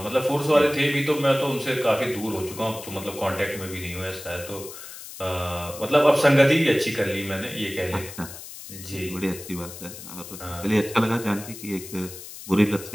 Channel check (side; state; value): left; noise; hiss, 13 dB below the sound